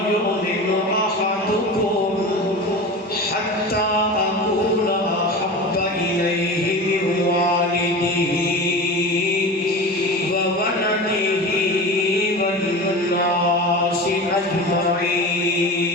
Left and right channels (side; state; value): both; normal; correlation 0.30